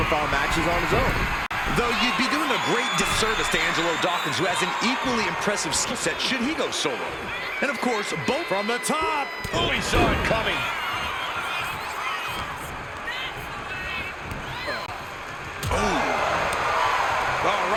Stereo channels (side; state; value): both; identical; correlation 1.00